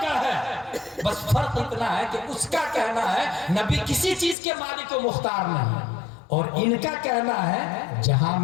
है। बस फर्क इतना है कि उसका कहना है नबी किसी चीज के मालिक को मुख्तार नहीं, और इनका कहना है जहां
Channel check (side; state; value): right; drops out; at 4.4 s